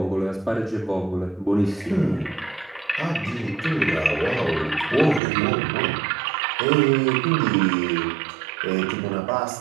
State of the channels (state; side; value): drops out; left; at 5.2 s